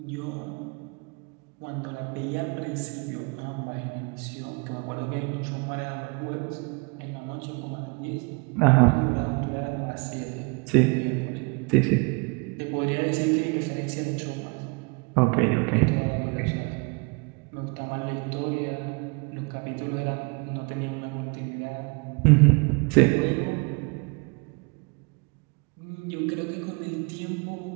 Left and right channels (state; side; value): quieter; left; 32.2 dB